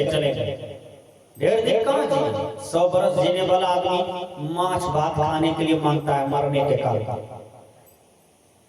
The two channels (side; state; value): both; identical; correlation 1.00